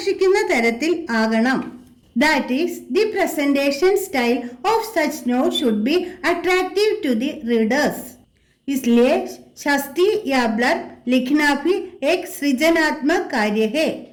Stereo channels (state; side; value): identical; both; correlation 1.00